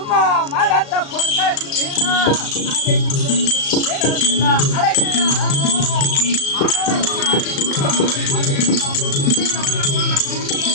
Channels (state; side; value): late; right; 36 ms